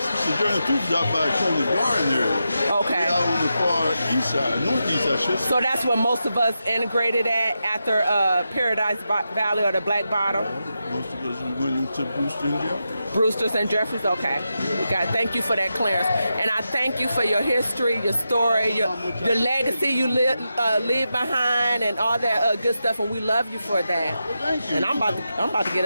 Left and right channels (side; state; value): both; inverted; correlation -0.88